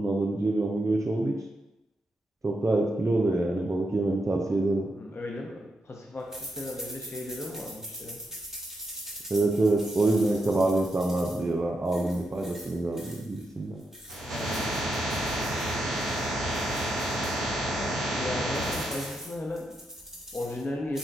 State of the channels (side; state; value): both; normal; correlation 0.84